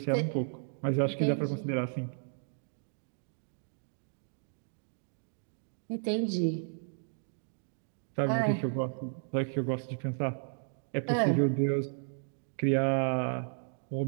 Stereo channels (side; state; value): left; silent; digital silence